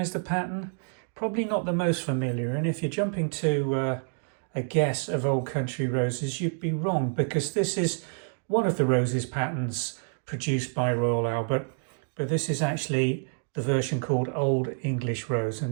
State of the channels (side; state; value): left; silent; digital silence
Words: the pattern? Probably not the most familiar, and if you're jumping to a guess of Old Country Roses, you'd be wrong, because this is one of the roses patterns produced by Royal Albert, but this is actually the version called Old English Rose.